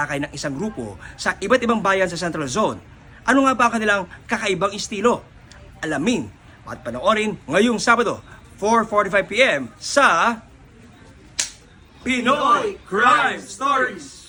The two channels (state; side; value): identical; both; correlation 1.00